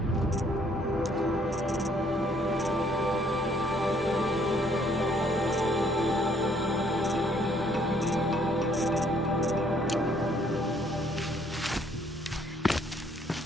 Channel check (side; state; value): both; normal; correlation 0.65